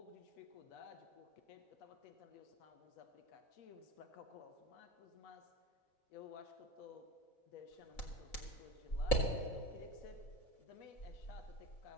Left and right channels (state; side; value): late; right; 4.0 ms